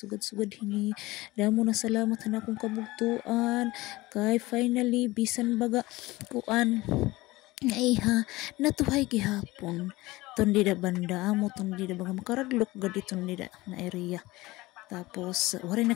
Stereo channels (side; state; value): right; quieter; 19.9 dB